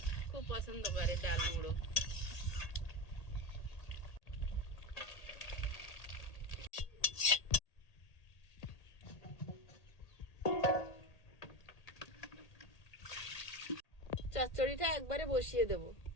খুব পছন্দ করে ডাল মুড়ো। চচ্চড়িটা একবারে বসিয়ে দেব।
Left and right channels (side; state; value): right; late; 1.8 ms